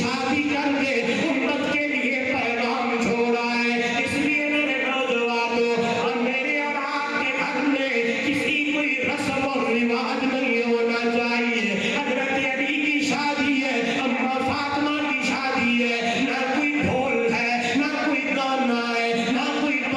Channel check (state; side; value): identical; both; correlation 1.00